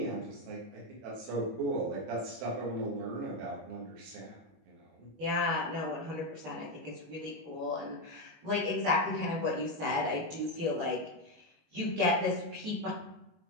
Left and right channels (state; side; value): late; left; 18 ms